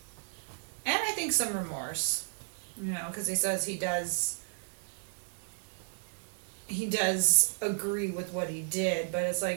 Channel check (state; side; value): silent; left; digital silence